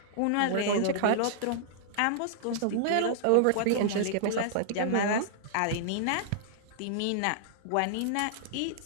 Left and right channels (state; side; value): different; both; correlation -0.01